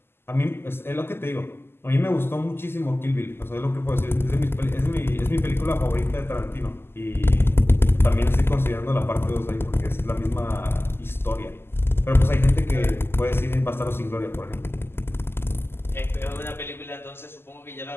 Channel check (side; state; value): right; late; 0.12 ms